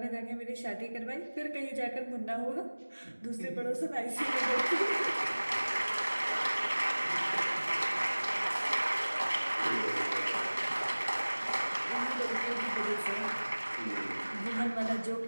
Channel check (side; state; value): both; inverted; correlation -1.00